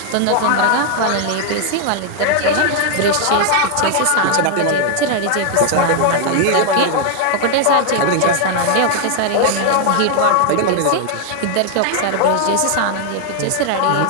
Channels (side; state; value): both; different; correlation 0.00